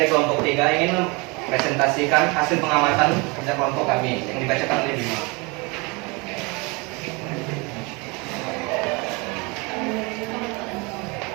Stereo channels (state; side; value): quieter; left; 28.0 dB